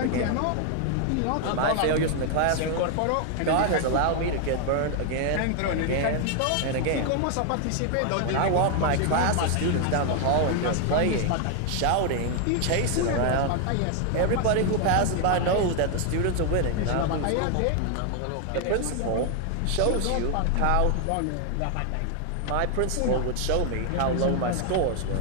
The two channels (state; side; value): different; both; correlation 0.00